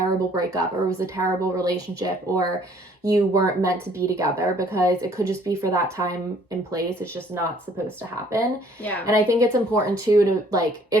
breakup or it was a terrible relationship or you weren't meant to be together, because it could just be for that time and place. It's just not supposed to happen. Yeah. And I think it's important too to like,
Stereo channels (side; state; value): both; normal; correlation 0.60